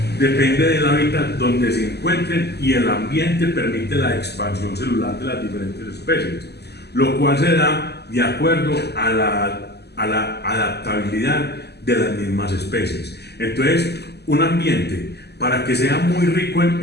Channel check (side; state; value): right; late; 0.48 ms